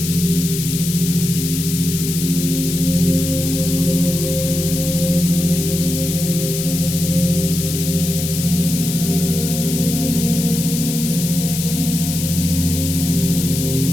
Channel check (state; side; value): noise; left; hiss, 5 dB below the sound